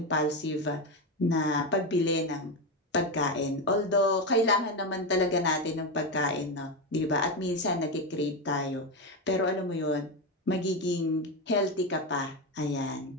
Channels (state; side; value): normal; both; correlation 0.12